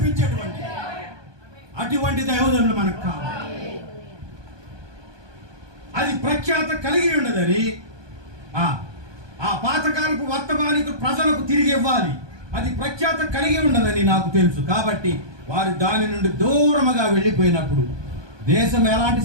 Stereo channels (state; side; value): late; left; 1.2 ms